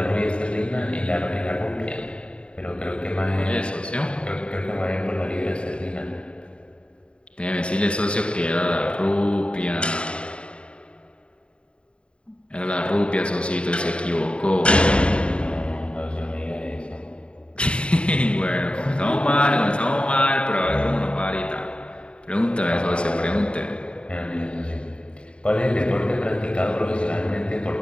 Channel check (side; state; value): right; late; 0.056 ms